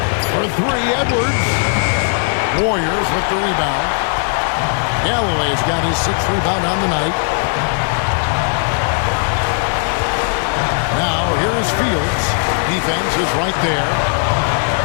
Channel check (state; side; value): silent; right; 55 dB below the other